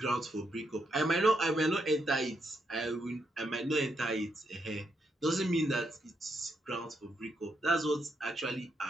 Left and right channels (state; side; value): normal; both; correlation 0.79